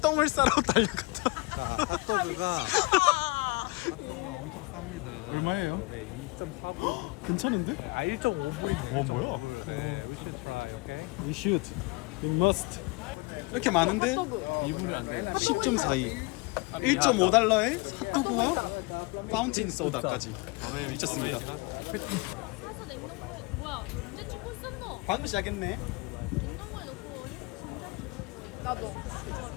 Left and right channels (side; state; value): right; quieter; 25.4 dB